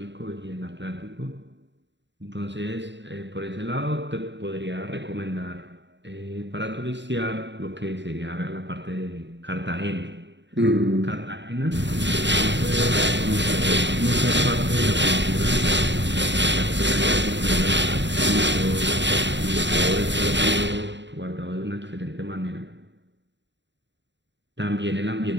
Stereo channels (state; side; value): late; left; 0.52 ms